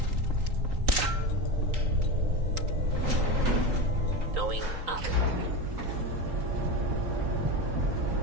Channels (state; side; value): late; left; 3.8 ms